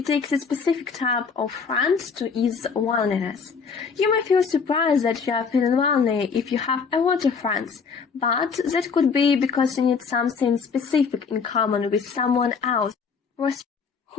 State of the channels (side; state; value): right; quieter; 5.6 dB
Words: takes a specific type of friend to ease loneliness. You may feel surprised that you are feeling lonely if you have a lot of friends, but that could be because you need something specific in common with someone else